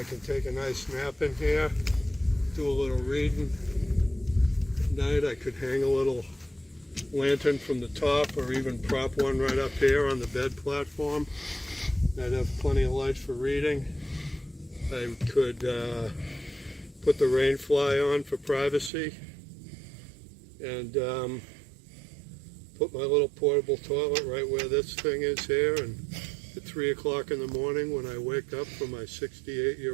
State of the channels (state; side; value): drops out; left; at 18.9 s